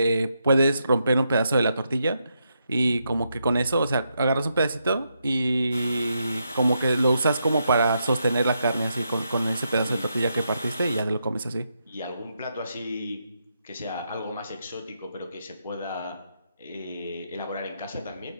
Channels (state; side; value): inverted; both; correlation -0.81